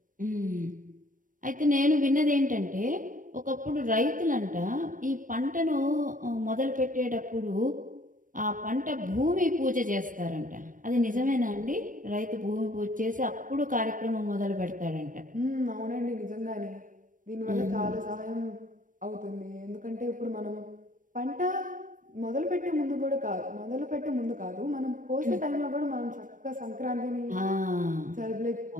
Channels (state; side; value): late; left; 0.38 ms